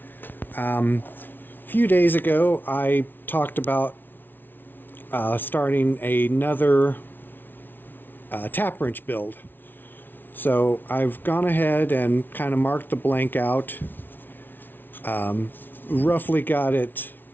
a few days ago, I talked about starting another tap wrench build. So I've gone ahead and kind of marked the blank out. Roughly got it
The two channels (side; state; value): right; late; 0.094 ms